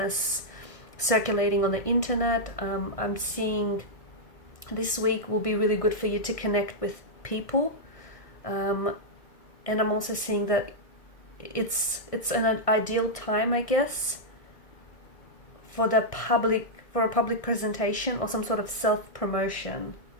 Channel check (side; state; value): right; late; 1.6 ms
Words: circulating on the internet, I'm seeing this week will be really good for you to connect with people, and I'm also seeing that it's an ideal time, I guess, for a public presentation or some sort of self-promotion.